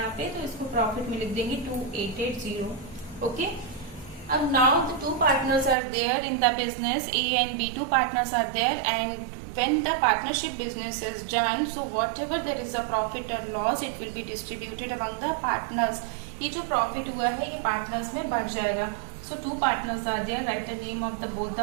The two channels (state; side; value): drops out; left; at 5.8 s